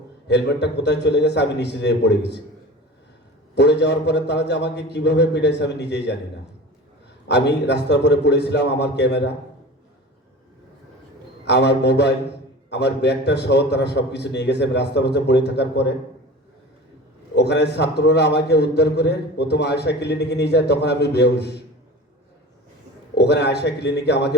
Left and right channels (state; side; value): normal; both; correlation 0.36